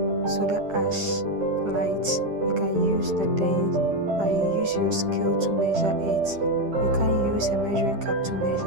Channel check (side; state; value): left; late; 10 ms